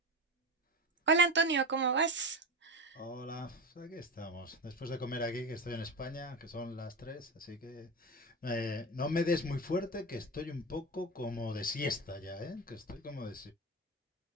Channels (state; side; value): normal; both; correlation 0.23